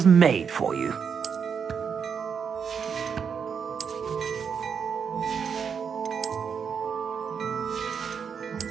made for you.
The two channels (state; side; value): quieter; left; 6.7 dB